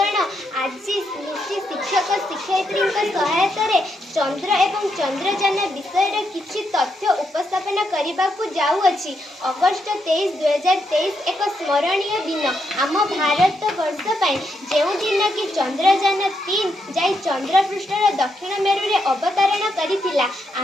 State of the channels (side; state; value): both; normal; correlation 0.80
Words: ଆଜି ମିଶି ଶିକ୍ଷକ ଶିକ୍ଷୟିତ୍ରୀଙ୍କ ସହାୟତାରେ ଚନ୍ଦ୍ର ଏବଂ ଚନ୍ଦ୍ରଯାନ ବିଷୟରେ କିଛି ତଥ୍ୟ ଉପସ୍ଥାପନ କରିବାକୁ ଯାଉଅଛି। ଅଗଷ୍ଟ 23, 2023 ଏକ ସ୍ମରଣୀୟ ଦିନ ଆମ ଭାରତ ବର୍ଷ ପାଇଁ, ଯେଉଁ ଦିନ କି ଚନ୍ଦ୍ରଯାନ 3 ଯାଇ ଚନ୍ଦ୍ରପୃଷ୍ଠର ଦକ୍ଷିଣ ମେରୁରେ ଅବତରଣ କରିଥିଲା।